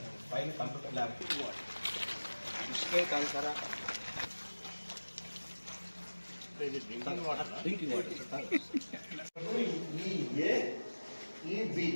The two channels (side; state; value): both; inverted; correlation -1.00